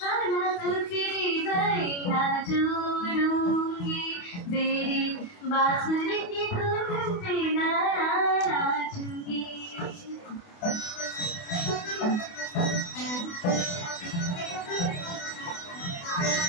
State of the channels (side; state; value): right; late; 28 ms